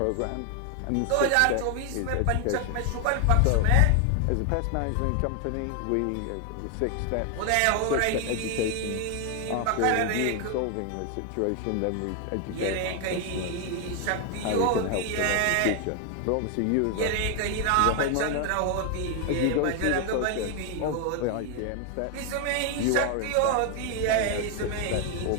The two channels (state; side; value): different; both; correlation 0.00